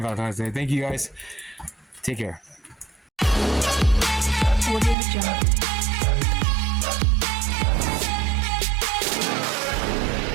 Valentine's Day. Thank you guys. Take care. What is the job?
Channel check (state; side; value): drops out; left; at 5.0 s